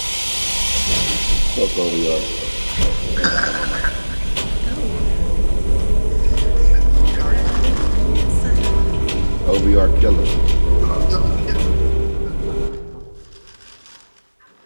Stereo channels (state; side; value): inverted; both; correlation -1.00